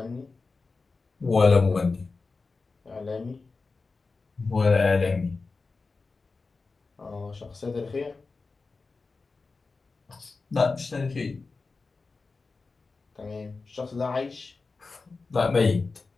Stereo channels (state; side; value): quieter; right; 4.1 dB